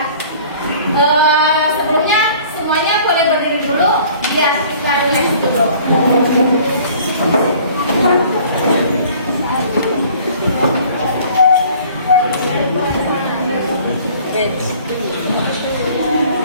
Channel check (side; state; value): both; inverted; correlation -0.51